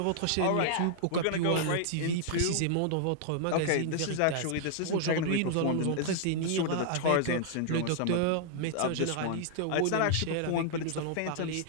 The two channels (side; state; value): both; different; correlation -0.01